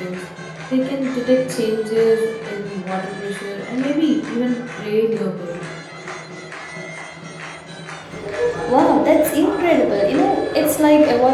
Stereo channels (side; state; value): both; identical; correlation 1.00